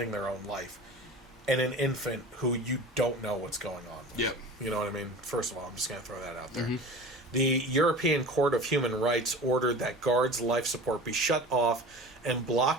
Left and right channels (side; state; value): both; normal; correlation 0.37